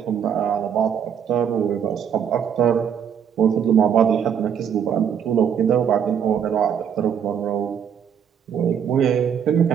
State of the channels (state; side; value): quieter; left; 8.1 dB